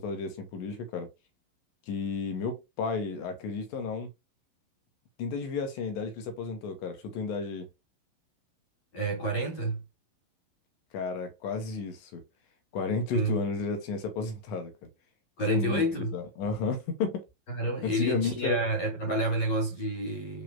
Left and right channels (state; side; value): late; right; 11 ms